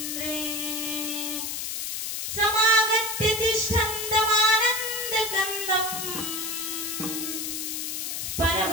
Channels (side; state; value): left; noise; hiss, 3 dB below the sound